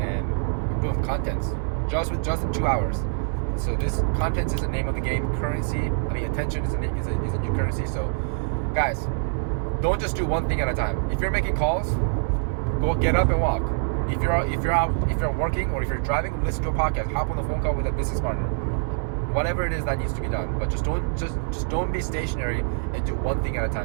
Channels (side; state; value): left; silent; digital silence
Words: build content just in 2 hours. So this content is the name of the game. Attention is a new currency. So guys, don't just do one thing at a time. If you're making calls, go get up and walk. If you're working or if you're driving, listen to a podcast, hop on the phone call with a business partner. Whatever it is that needs to be done, but just don't be stationary and do one thing at a